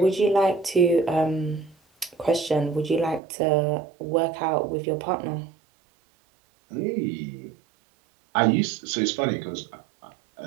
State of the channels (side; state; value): left; drops out; at 3.2 s